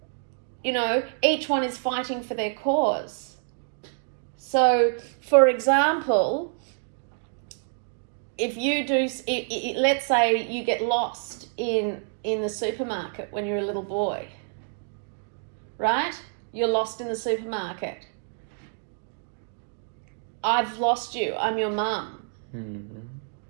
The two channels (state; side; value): silent; left; digital silence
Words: know, each one is fighting for their cause. So, for example, if you do, let's say you get lost in the supermarket when you're a little boy, right? You're lost in the supermarket. I've lost you. I'm your mum.